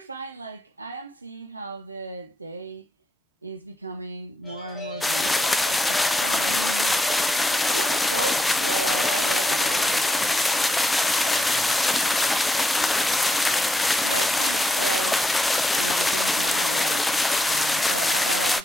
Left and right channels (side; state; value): both; normal; correlation 0.82